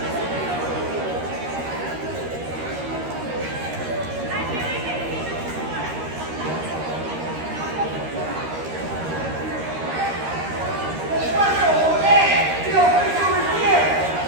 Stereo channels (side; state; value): left; late; 13 ms